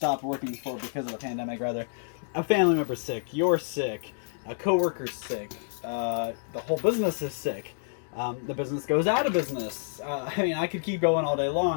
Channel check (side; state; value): right; silent; digital silence